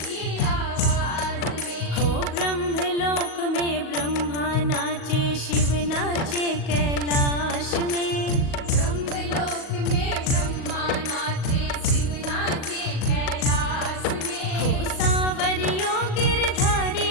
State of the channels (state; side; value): late; right; 38 ms